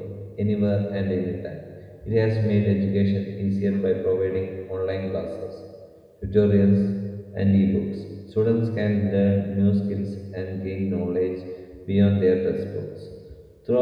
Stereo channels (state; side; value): identical; both; correlation 1.00